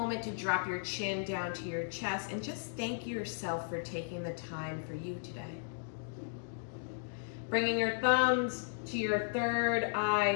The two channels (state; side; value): silent; right; digital silence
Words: to drop your chin down to your chest and just thank yourself for taking the time for you today. Bringing your thumbs to your third